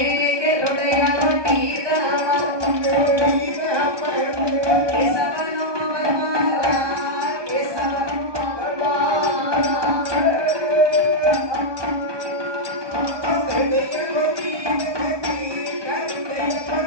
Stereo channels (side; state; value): left; late; 1.2 ms